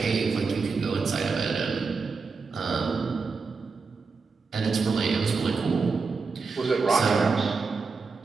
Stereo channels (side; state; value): left; quieter; 4.7 dB